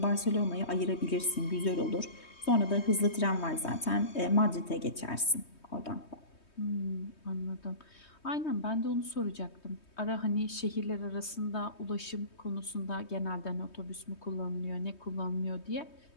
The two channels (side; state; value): right; late; 3.2 ms